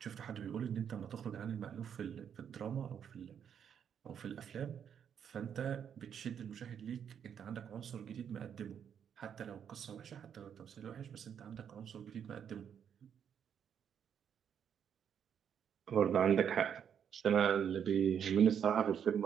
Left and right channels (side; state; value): left; quieter; 8.2 dB